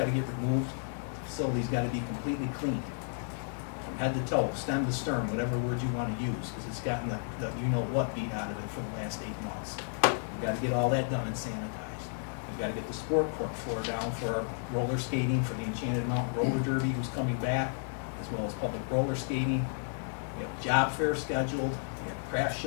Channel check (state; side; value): silent; right; digital silence